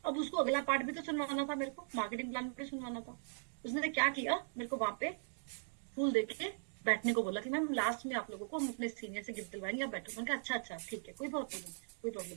अब उसको अगला पार्ट भी तो सुनवाना था, मेरे को मार्केटिंग प्लान भी सुनवाना था। उसने क्या किया, मेरे को वहां पे फूल देके बैठने को बोला कि मैम लास्ट में आप लोगों को हम अपने सीनियर से गिफ्ट दिलवाएंगे, आप बैठो। मैंने कहा अच्छा अच्छा ठीक है, कोई प्रॉब्लम नहीं, कोई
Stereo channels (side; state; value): left; silent; digital silence